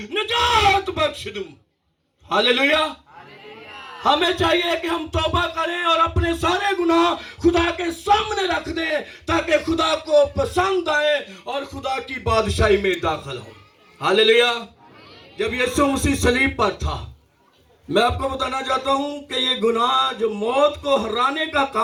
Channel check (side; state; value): both; identical; correlation 1.00